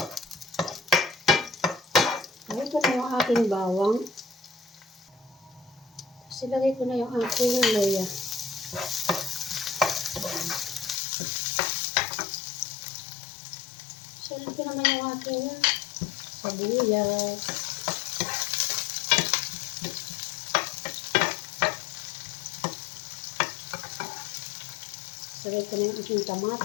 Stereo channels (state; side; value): drops out; right; at 11.0 s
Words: Lagay ko na yung aking bawang. Tapos ilagay ko na yung aking luya. Salit ko naman yung aking sibuyas. Salit ko na yung aking